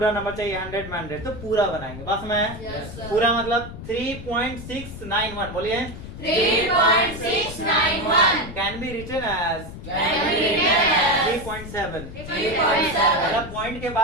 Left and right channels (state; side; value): noise; left; rumble, 11 dB below the sound